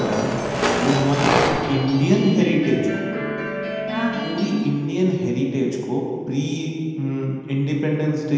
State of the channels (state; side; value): identical; both; correlation 1.00